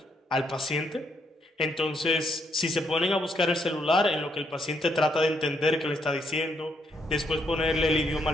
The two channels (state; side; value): normal; both; correlation 0.74